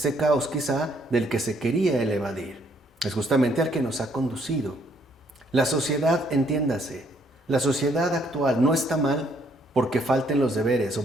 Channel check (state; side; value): normal; both; correlation 0.68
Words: caos quizá del que se quería el evadir, es justamente al que nos ha conducido. La sociedad, entiéndase, la sociedad actual no está mal porque falten los deberes